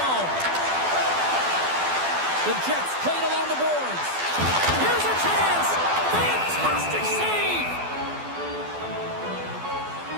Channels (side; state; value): left; late; 12 ms